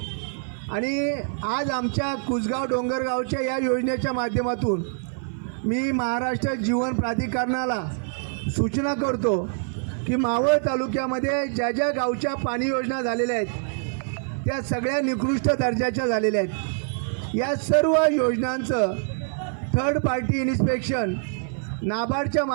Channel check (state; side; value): silent; left; 55 dB below the other